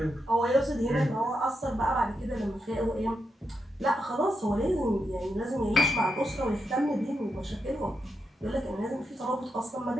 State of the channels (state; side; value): normal; both; correlation 0.84